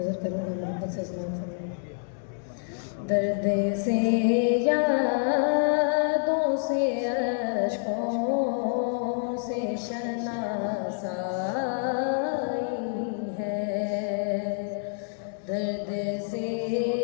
کروں گا، محبت سے سماعت فرمائیں۔ درد سے یادوں سے اشکوں سے شناسائی ہے، درد سے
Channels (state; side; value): silent; right; digital silence